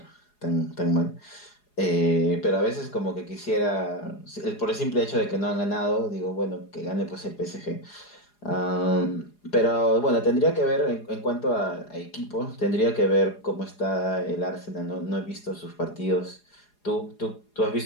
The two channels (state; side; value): late; right; 4.8 ms